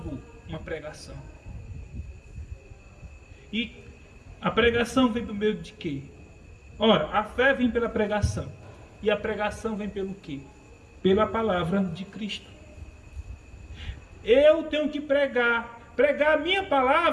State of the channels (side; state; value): both; identical; correlation 1.00